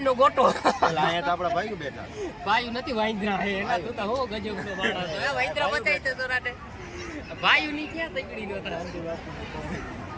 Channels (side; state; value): both; identical; correlation 1.00